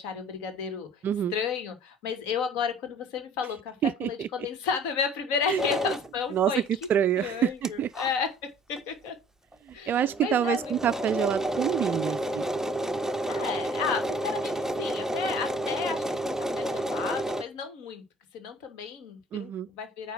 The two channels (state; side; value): normal; both; correlation 0.52